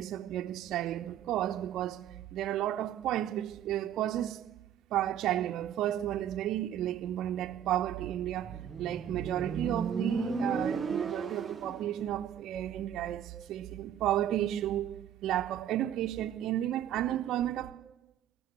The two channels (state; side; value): quieter; left; 10.4 dB